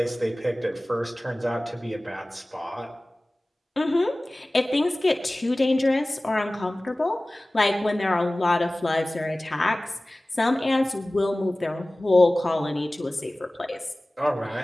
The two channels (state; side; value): normal; both; correlation 0.98